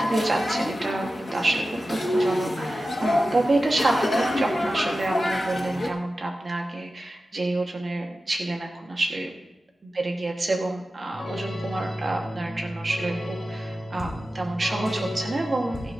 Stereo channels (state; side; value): normal; both; correlation 0.94